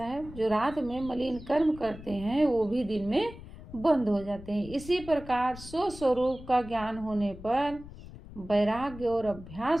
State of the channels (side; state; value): left; noise; rumble, 15 dB below the sound